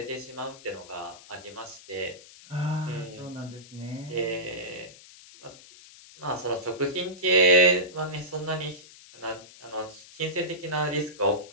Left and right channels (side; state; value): left; noise; hiss, 20 dB below the sound